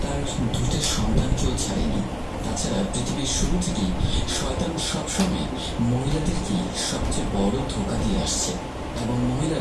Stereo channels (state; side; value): identical; both; correlation 1.00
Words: তার দুইটা সন্তানকেও ছাড়েনি। তাছাড়া পৃথিবীর শুরু থেকেই শয়তান সবসময় মহিলাদেরকে সবচেয়ে বড় ধোঁকা দিয়ে আসছে, এবং